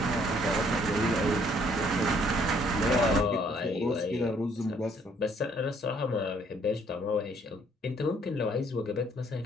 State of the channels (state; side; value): normal; both; correlation 0.64